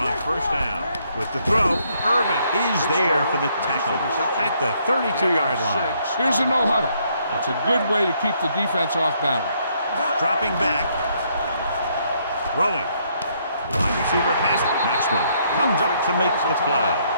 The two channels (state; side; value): inverted; both; correlation -0.70